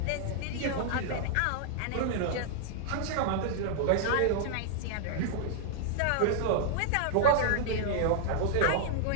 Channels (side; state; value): both; different; correlation -0.01